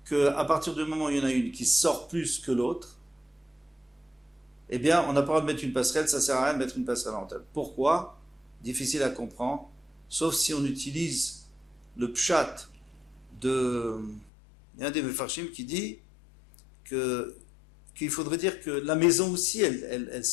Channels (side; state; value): right; drops out; at 14.3 s